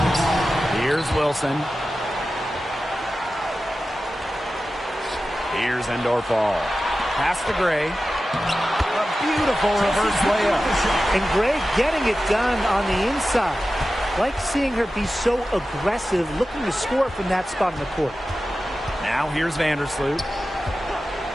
Here's Wilson. Here's Endorf-All. Pass to Gray. A beautiful reverse layup. And Gray getting it done on the inside. Like seeing her be so aggressive, looking to score from that spot in the court. Now here's Vandersloot.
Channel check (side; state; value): both; normal; correlation 0.94